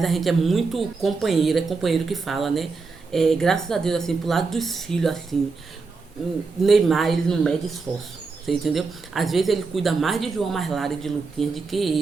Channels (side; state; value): left; quieter; 4.3 dB